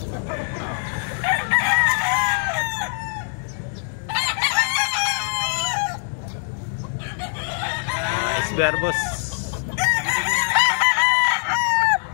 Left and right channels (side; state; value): right; silent; 64 dB below the other